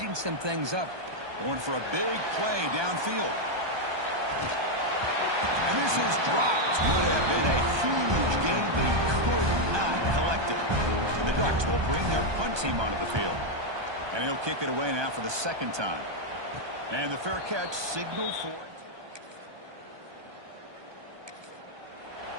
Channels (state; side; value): late; left; 1.2 ms